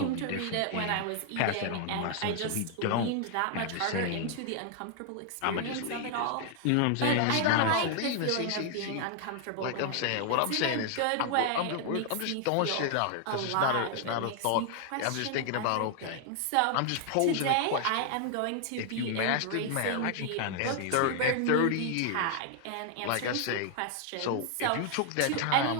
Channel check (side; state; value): both; different; correlation 0.00